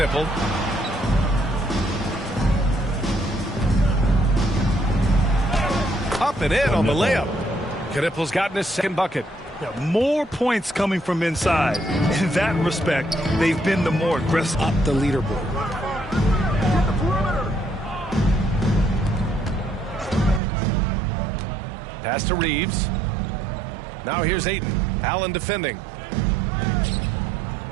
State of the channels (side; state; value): left; drops out; at 20.4 s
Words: Up and in on the layup. Knippel's gotten his second bucket. Yeah, more points coming from inside. In that respect, they've been the more aggressive. Up the leaderboard. Pass to Reeves. Now here's Ayton. Allen defending.